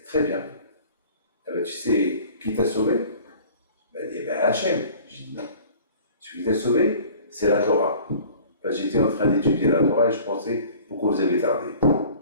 très bien. Ah ben, tu sais qui t'a sauvé? Il dit, Hachem. J'ai dit, non. Celui qui t'a sauvé, c'est la Torah. J'étais en train d'étudier la Torah et je pensais, pourquoi vous avez tardé?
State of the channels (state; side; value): inverted; both; correlation -0.47